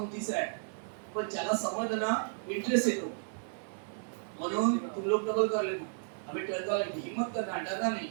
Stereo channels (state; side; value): silent; left; 55 dB below the other